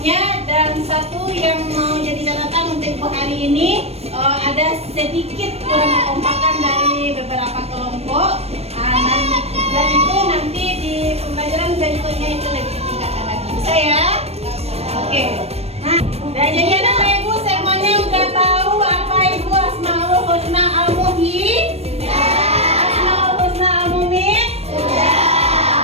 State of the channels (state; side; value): late; left; 0.30 ms